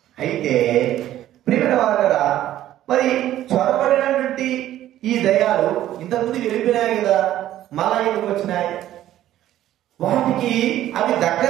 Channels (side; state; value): left; quieter; 13.0 dB